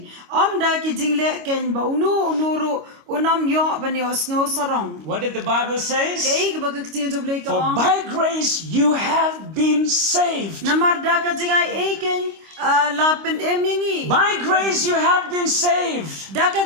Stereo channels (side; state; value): left; late; 25 ms